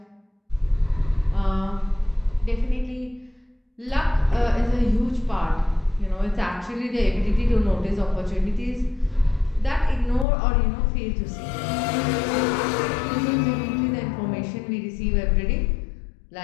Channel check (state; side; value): drops out; right; at 10.2 s